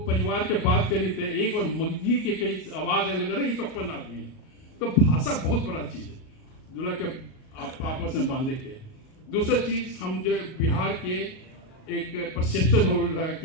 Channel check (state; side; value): late; right; 38 ms